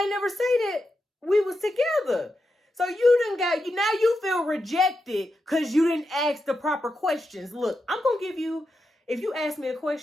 ain't never say that we was together. So now you feel rejected because you didn't ask the proper questions. Look, I'm going to give you, if you ask me a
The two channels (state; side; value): normal; both; correlation 0.87